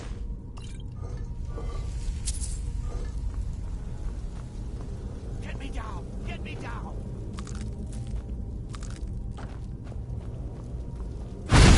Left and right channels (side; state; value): both; identical; correlation 1.00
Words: Get me down! Get me down!